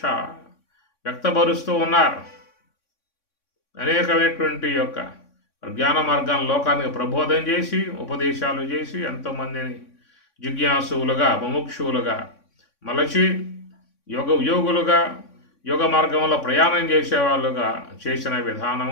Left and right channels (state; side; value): late; right; 3.6 ms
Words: వ్యక్తపరుస్తూ ఉన్నారు. అనేకమైనటువంటి యొక్క జ్ఞాన మార్గాన్ని లోకానికి ప్రబోధం చేసి ఉపదేశాలు చేసి ఎంతోమందిని జిజ్ఞాసువులుగా ముముక్షువులుగా మలచి యోగులుగా యోగ మార్గంలో ప్రయాణం చేసేవాళ్ళుగా చేసిన